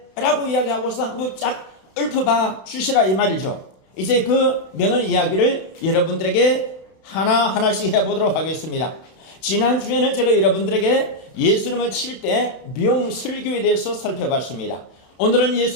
라고 이야기하고서 한번 쫙 읊어봐 주시라 이 말이죠. 이제 그 명언 이야기를 여러분들에게 하나하나씩 해보도록 하겠습니다. 지난주에는 제가 여러분들에게 예수님을 7대 명설교에 대해서 살펴봤습니다. 오늘은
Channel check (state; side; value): late; right; 31 ms